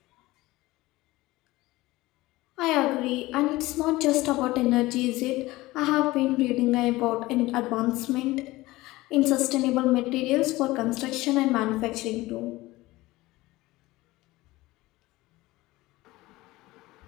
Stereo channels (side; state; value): right; quieter; 19.2 dB